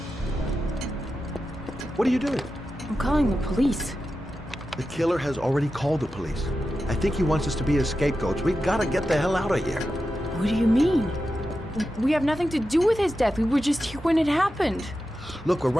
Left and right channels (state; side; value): normal; both; correlation 0.91